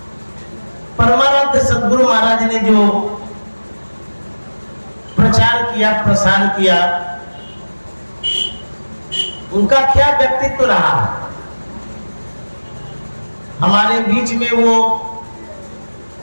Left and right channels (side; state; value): both; inverted; correlation -1.00